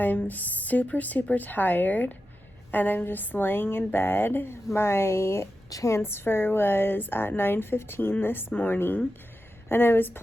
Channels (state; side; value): normal; both; correlation 0.91